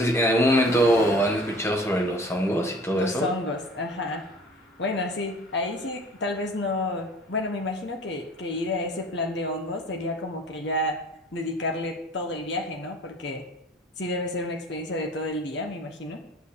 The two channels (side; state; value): both; normal; correlation 0.46